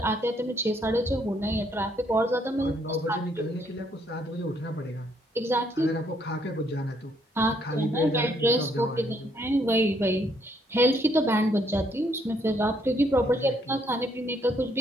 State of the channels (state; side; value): normal; both; correlation 0.70